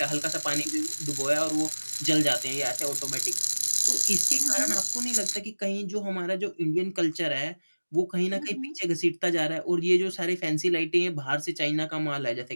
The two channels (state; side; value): inverted; both; correlation -1.00